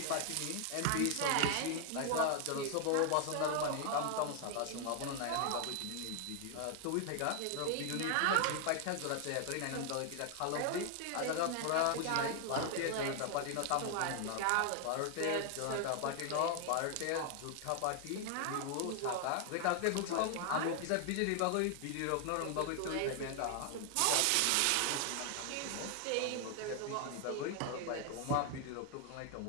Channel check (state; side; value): different; both; correlation 0.00